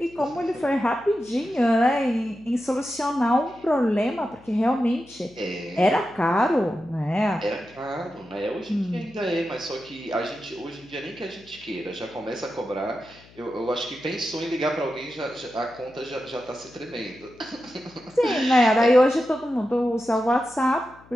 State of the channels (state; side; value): noise; left; hum, 25 dB below the sound